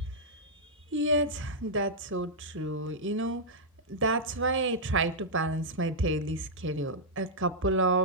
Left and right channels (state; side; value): normal; both; correlation -0.08